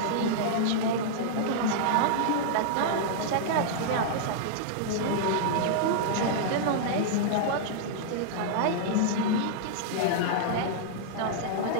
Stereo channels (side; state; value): both; different; correlation -0.02